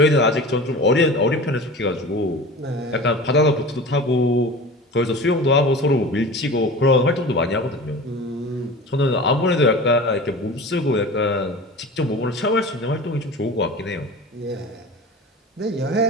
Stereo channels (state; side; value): normal; both; correlation 0.35